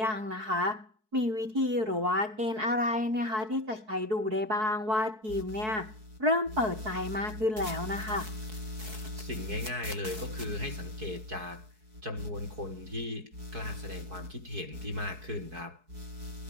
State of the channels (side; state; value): left; late; 4.6 ms